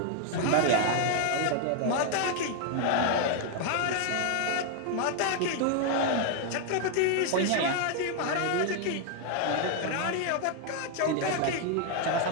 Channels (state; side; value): different; both; correlation 0.00